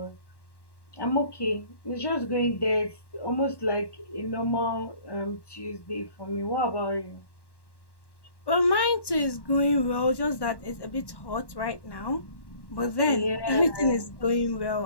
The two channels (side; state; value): right; late; 1.1 ms